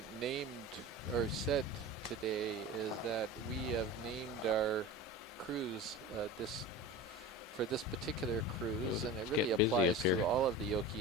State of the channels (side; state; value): both; normal; correlation 0.32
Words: named or said today is that we have named our cruise for this particular cruise, and it really applies to all of the